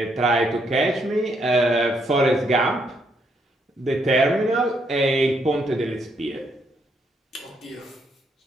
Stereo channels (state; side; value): normal; both; correlation 0.74